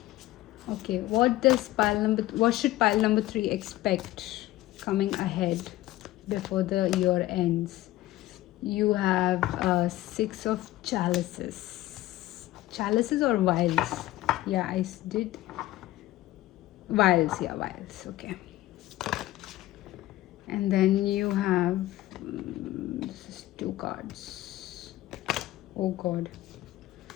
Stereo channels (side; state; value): right; quieter; 16.2 dB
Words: Okay, what should pile number 3 expect coming ahead before the year ends? You have 6 of chalices. Chalices or vials? Yeah, I did vials. Yeah, vials. Okay. And then you have this is 2 cards. Oh god,